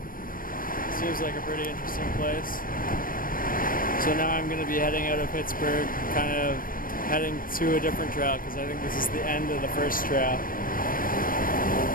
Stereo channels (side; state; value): right; late; 0.41 ms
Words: Seems like a pretty interesting place. So now I'm going to be heading out of Pittsburgh, kind of heading to a different trail because I think this is the end of the first trail.